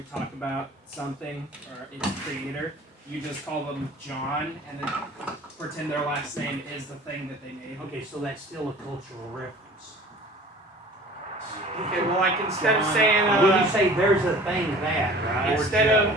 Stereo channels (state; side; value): normal; both; correlation 0.46